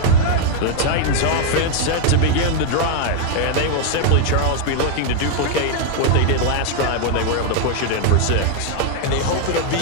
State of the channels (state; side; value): different; both; correlation 0.00